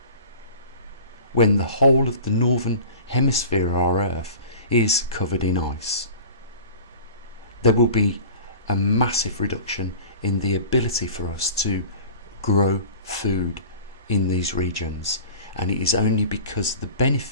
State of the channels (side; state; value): both; inverted; correlation -0.41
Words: When the whole of the northern hemisphere of our Earth is covered in ice, there will be a massive reduction in the ability for us to grow food in these regions, and it is only because of the